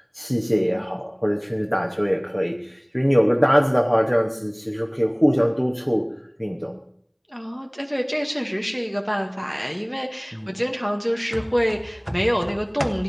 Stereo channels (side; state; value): both; identical; correlation 1.00